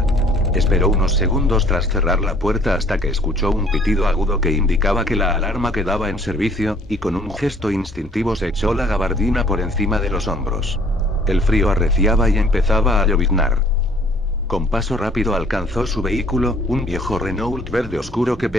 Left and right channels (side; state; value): both; normal; correlation 0.58